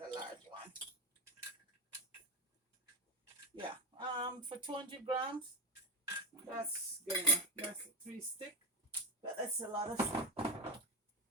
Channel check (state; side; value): normal; both; correlation 0.18